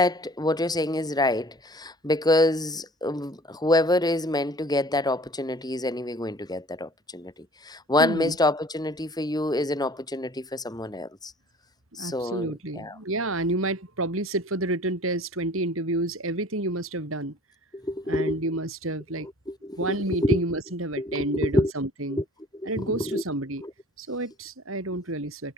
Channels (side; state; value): both; normal; correlation 0.48